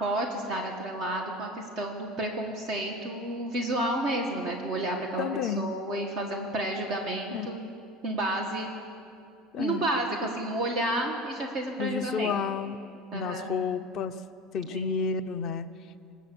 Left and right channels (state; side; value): normal; both; correlation 0.32